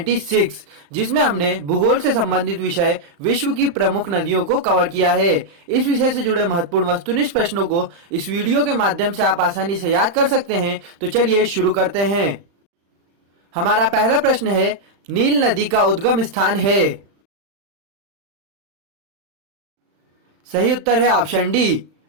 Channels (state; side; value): late; left; 35 ms